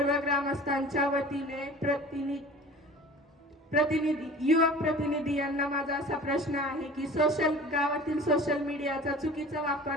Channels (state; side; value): normal; both; correlation 0.42